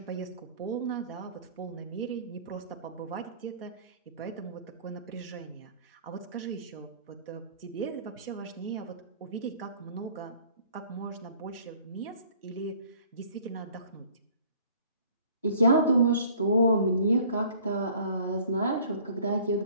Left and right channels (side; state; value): both; inverted; correlation -0.53